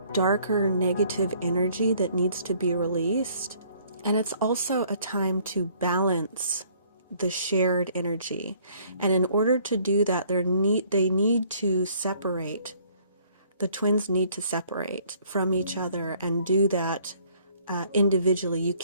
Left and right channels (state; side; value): inverted; both; correlation -0.61